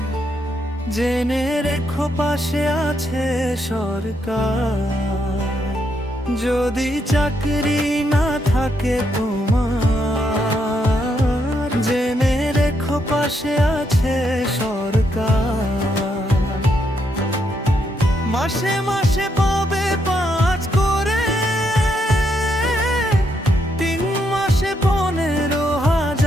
জেনে রেখো পাশে আছে সরকার। যদি চাকরি না থাকে তোমার, জেনে রেখো পাশে আছে সরকার। মাসে মাসে পাবে 5 করে, 3 মাসে 15,000।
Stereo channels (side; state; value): both; normal; correlation 0.78